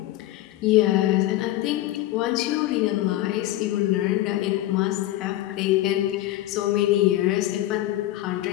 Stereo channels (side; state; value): right; quieter; 15.1 dB